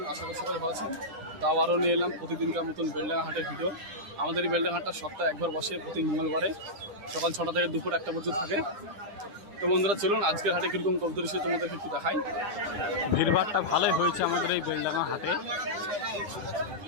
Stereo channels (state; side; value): late; left; 9.9 ms